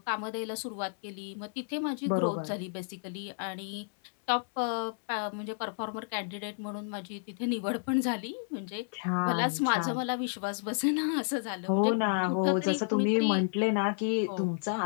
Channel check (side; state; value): right; silent; digital silence